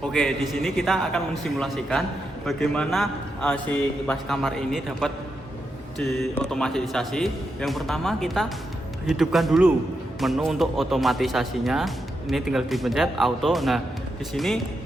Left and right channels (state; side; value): normal; both; correlation 0.85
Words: Oke, di sini kita akan mensimulasikan bagaimana si kipas kamar ini dapat diotomatisasi. Yang pertama kita hidupkan dulu menu untuk otomatisasinya. Ini tinggal dipencet auto. Nah, di sini